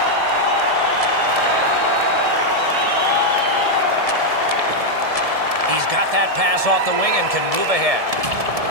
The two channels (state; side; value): late; left; 1.7 ms